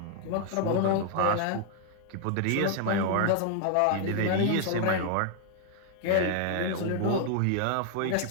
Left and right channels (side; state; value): both; different; correlation 0.00